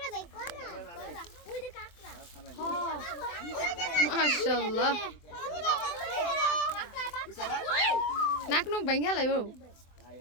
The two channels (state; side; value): late; right; 24 ms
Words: মাশাআল্লাহ। নাক নুক ভাঙ্গা লাইব